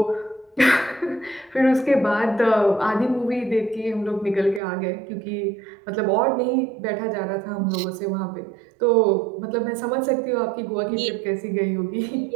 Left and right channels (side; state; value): left; drops out; at 4.6 s